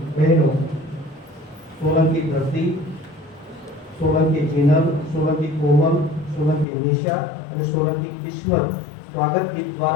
બહેનો સોલંકી ધરતી, સોલંકી જીનલ, સોલંકી કોમલ, સોલંકી નિશા અને સોલંકી કિસ્મત સ્વાગત ગીત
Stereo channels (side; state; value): right; drops out; at 6.7 s